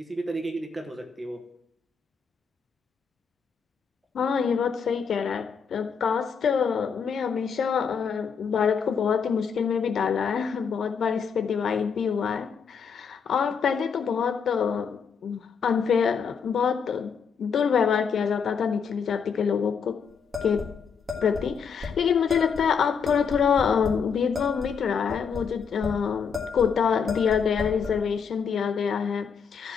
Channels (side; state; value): right; quieter; 6.3 dB